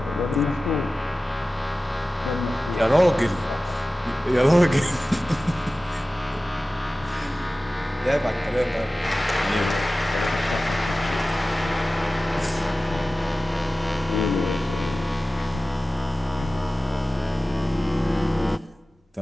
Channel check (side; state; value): both; normal; correlation 0.96